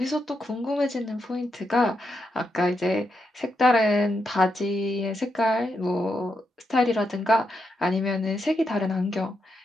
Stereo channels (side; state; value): both; normal; correlation 0.83